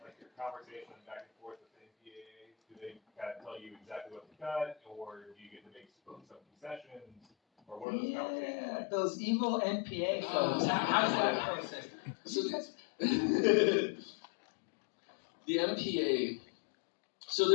like your conversation back and forth with the NPAA. Do they kind of tell you exactly what to cut, or do you get to make some concessions, or what are those conversations yeah, like? those evil NPA folks. How's that process? So the MPA.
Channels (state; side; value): drops out; right; at 7.9 s